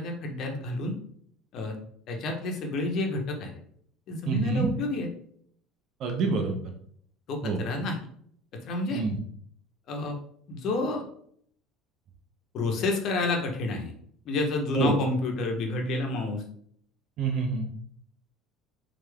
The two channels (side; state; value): both; normal; correlation 0.41